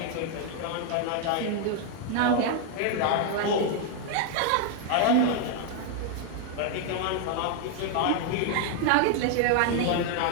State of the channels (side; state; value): both; different; correlation 0.00